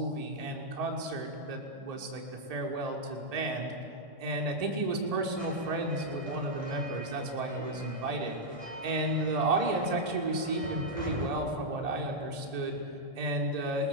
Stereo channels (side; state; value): left; late; 1.8 ms